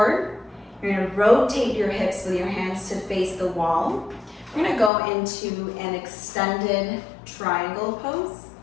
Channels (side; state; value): right; drops out; at 4.9 s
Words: You're gonna rotate your hips with your hands to face the wall. We're gonna go into an extended triangle pose.